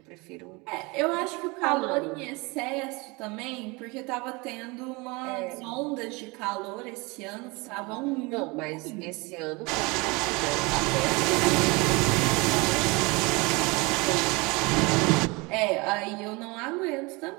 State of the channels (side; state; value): left; quieter; 26.2 dB